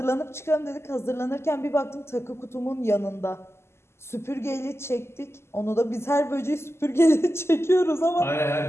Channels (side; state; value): right; late; 0.12 ms